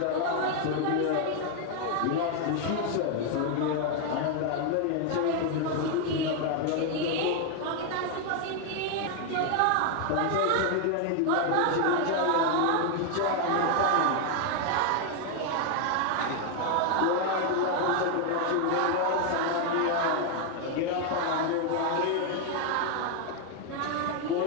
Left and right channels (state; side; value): different; both; correlation 0.00